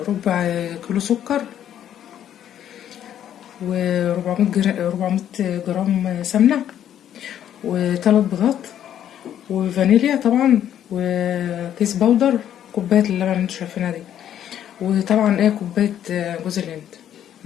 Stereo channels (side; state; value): right; quieter; 10.5 dB